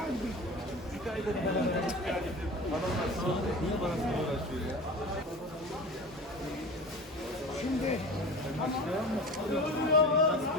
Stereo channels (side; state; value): both; normal; correlation 0.33